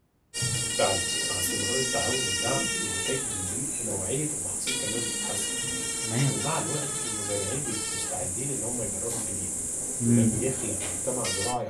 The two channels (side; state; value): both; identical; correlation 1.00